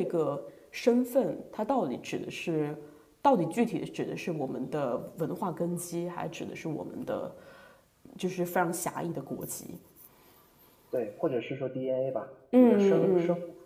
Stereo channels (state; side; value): identical; both; correlation 1.00